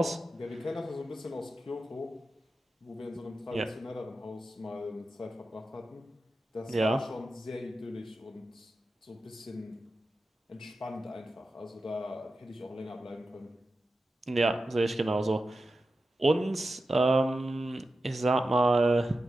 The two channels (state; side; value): normal; both; correlation 0.91